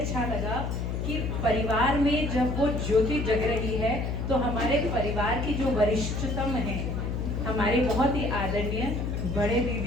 लगा कि परिवार में जब वो ज्योति जग रही है तो हमारे परिवार की जो वरिष्ठतम हैं, हमारे बहुत ही आदरणीय बड़े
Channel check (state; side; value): noise; left; hum, 2 dB below the sound